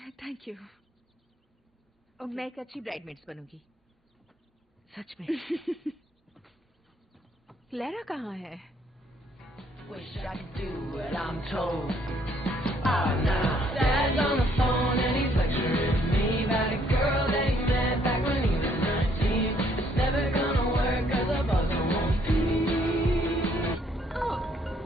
Thank you. मैं एक अच्छी ब्राइडमेड्स बनूंगी, सच में। क्लेरा कहाँ है? Wish I could do what I'm told. Oh, now Dad's on the phone and he's lecturing me about a girl that he met back when he was 19. It's never gonna work 'cause the buzzer won't pee. Oh,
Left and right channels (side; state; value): both; normal; correlation 0.66